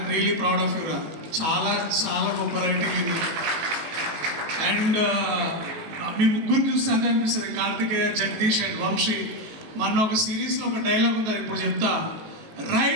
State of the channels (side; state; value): left; late; 18 ms